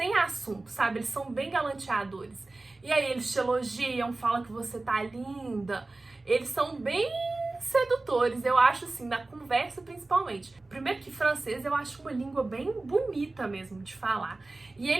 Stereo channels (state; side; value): quieter; left; 3.2 dB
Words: assunto, sabe? Eles são bem galanteadores. E aí eles te elogiam, falam que você tá linda. Eles são bem sedutores, eu acho, assim, na conversa principalmente. Primeiro que francês eu acho uma língua bem bonita mesmo de falar. E